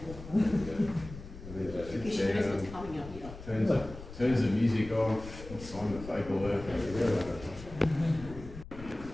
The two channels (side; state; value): left; noise; rumble, 14 dB below the sound